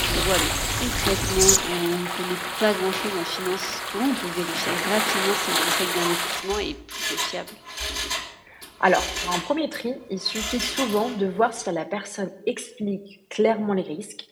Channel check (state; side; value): identical; both; correlation 1.00